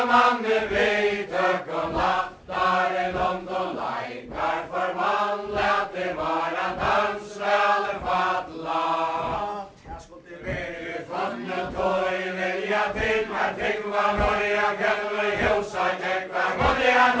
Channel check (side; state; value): both; identical; correlation 1.00